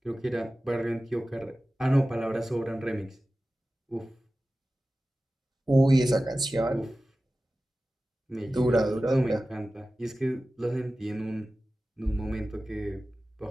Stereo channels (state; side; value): normal; both; correlation 0.95